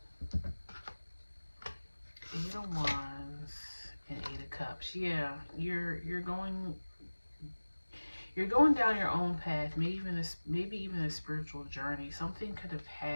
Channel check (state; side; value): inverted; both; correlation -1.00